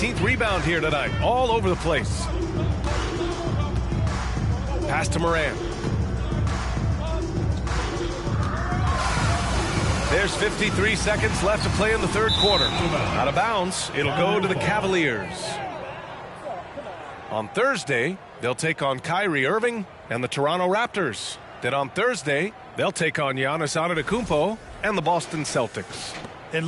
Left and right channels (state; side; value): identical; both; correlation 1.00